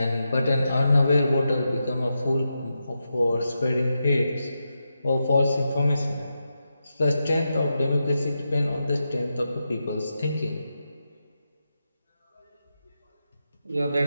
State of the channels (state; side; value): inverted; both; correlation -0.88